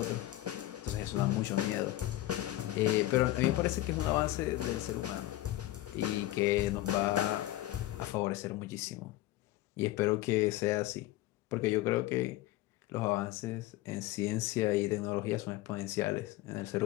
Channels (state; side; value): quieter; right; 16.1 dB